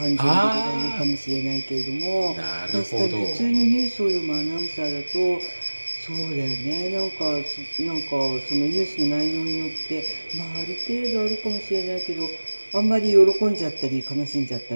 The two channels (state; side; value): inverted; both; correlation -1.00